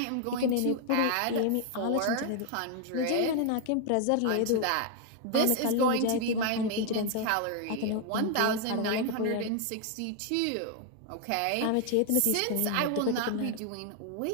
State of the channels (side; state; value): both; different; correlation 0.00